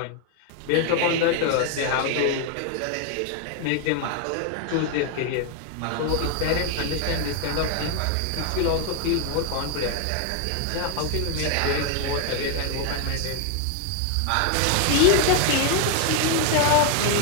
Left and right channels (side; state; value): both; different; correlation 0.01